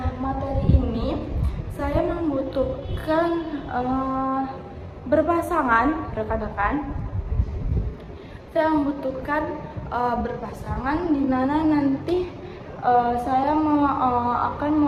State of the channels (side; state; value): both; identical; correlation 1.00